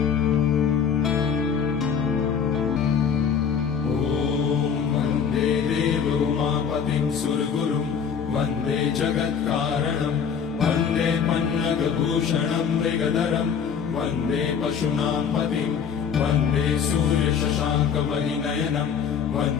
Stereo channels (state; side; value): quieter; right; 7.0 dB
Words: उमापतिं सुरगुरुं वन्दे जगत्कारणं वन्दे पन्नगभूषणं मृगधरं वन्दे पशूनां पतिं वन्दे सूर्यशशाङ्कवलिनयनं